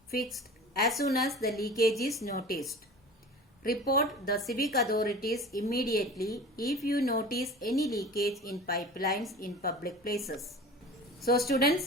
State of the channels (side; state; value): both; normal; correlation 0.38